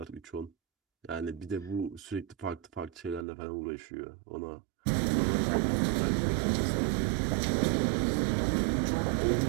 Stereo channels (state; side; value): drops out; left; at 3.2 s